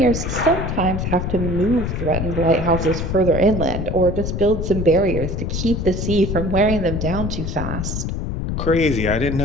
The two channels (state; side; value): noise; left; rumble, 3 dB below the sound